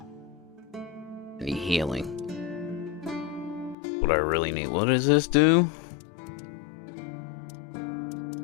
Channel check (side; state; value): right; drops out; at 3.8 s